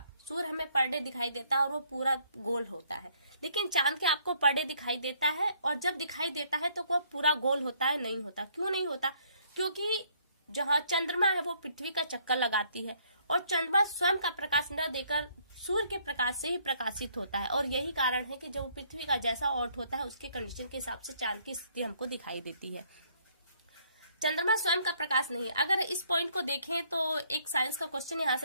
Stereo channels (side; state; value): both; inverted; correlation -0.65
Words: सूर्य हमें पर डे दिखाई देता है और वो पूरा गोल होता है, लेकिन चांद के आपको पर डे दिखाई देता है और जब दिखाई देता है तो वो पूरा गोल होता है, नहीं होता। क्यों नहीं होता? क्योंकि जहाँ चंद्रमा है वो पृथ्वी का चक्कर लगाती है और चंद्रमा स्वयं का प्रकाश न देकर सूर्य के प्रकाश से ही प्रकाशित होता है, और यही कारण है कि जब पृथ्वी का जैसा ऑर्ट होता है उसके कंडीशन के हिसाब से चांद की स्थिति हमको दिखाई देती है। चंद्रमा स्वयं का प्रकाश नहीं है। अगर इस पॉइंट को देखें तो एक साइंस का क्वेश्चन यहाँ